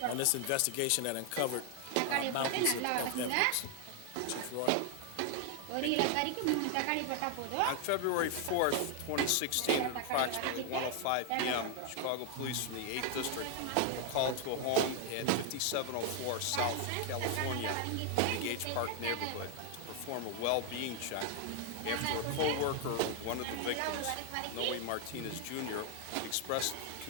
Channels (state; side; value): different; both; correlation 0.00